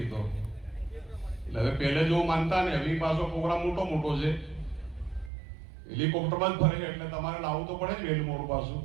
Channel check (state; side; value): drops out; left; at 5.3 s